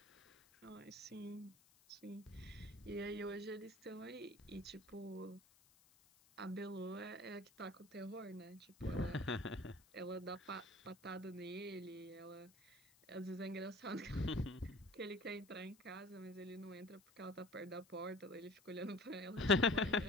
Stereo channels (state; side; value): noise; left; hiss, 27 dB below the sound